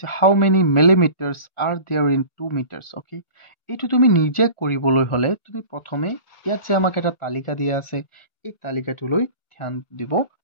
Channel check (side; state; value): right; late; 1.4 ms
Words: how many millimetres are there in 2 metres. Okay, এইটো তুমি নিজে কৰিবলৈ হ'লে তুমি প্ৰথমে ইয়াত যে আমাক এটা তালিকা দিয়া আছে, এই তালিকাটোলৈ ধ্যান দিব